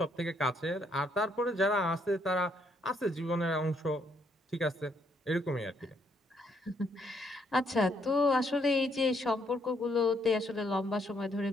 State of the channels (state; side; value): normal; both; correlation 0.71